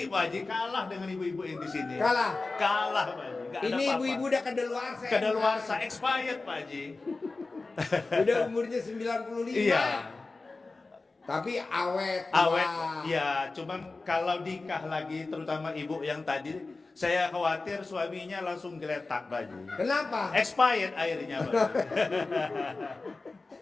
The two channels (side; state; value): right; quieter; 3.6 dB